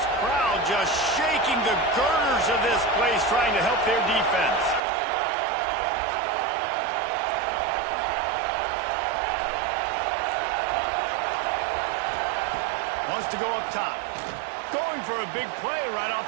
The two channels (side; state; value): left; drops out; at 4.8 s